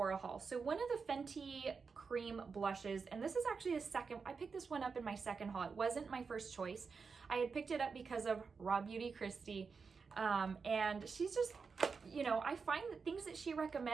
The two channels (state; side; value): quieter; left; 5.2 dB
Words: haul. So one of the Fenty cream blushes, and this is actually the second, I picked this one up in my second haul. It wasn't my first choice. I had picked it up because of Raw Beauty Christie, and she's just, you know, I find that things that she